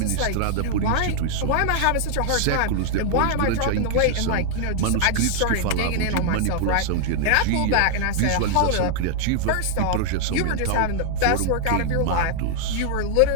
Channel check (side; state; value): both; different; correlation -0.01